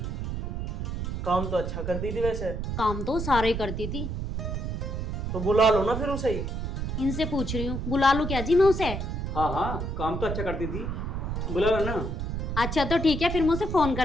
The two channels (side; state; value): right; noise; rumble, 3 dB below the sound